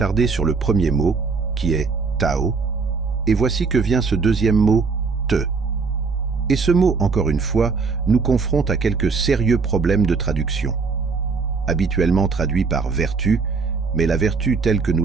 sur le premier mot, qui est Tao, et voici que vient ce deuxième mot, Te. Et ce mot, encore une fois, nous confronte à quelques sérieux problèmes de traduction. Habituellement traduit par vertu, mais la vertu telle que nous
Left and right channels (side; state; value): left; quieter; 4.8 dB